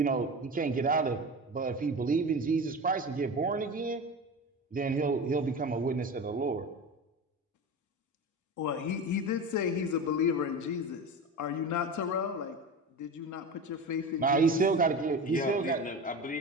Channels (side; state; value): both; normal; correlation 0.28